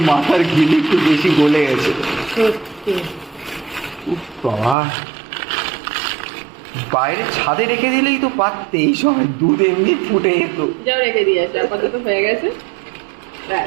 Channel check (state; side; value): drops out; left; at 4.8 s